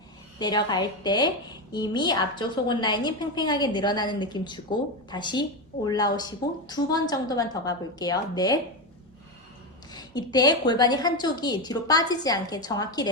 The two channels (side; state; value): both; normal; correlation 0.13